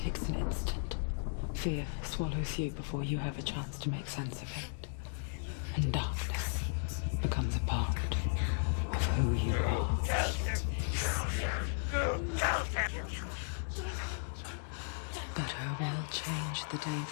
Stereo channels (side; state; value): right; silent; 54 dB below the other